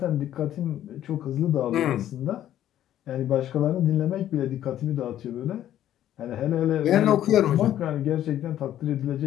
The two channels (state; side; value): quieter; right; 11.9 dB